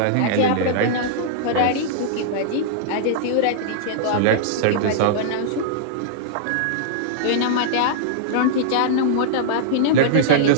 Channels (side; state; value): both; different; correlation -0.02